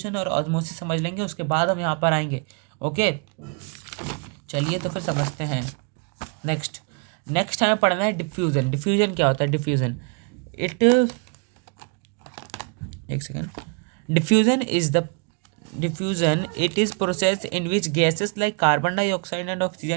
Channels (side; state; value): left; quieter; 36.8 dB